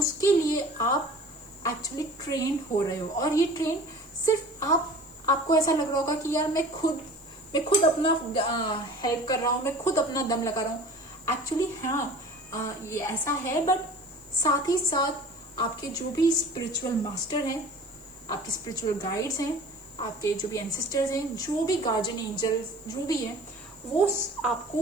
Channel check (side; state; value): right; noise; hiss, 27 dB below the sound